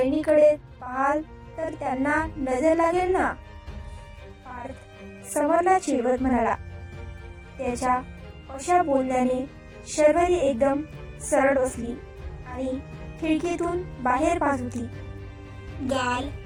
पाहाल तर त्यांना नजर लागेल ना, पार्थ समरला चिडवत म्हणाला. त्याच्या अशा बोलण्याने शर्वरी एकदम सरळ बसली आणि खिडकीतून बाहेर पाहत होती. गाल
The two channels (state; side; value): identical; both; correlation 1.00